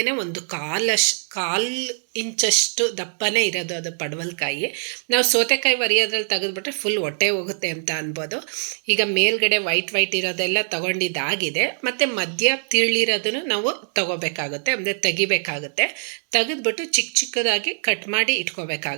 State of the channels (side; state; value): left; silent; digital silence